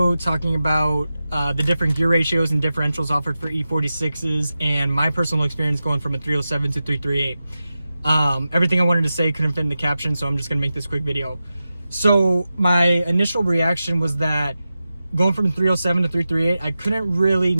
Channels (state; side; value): inverted; both; correlation -0.92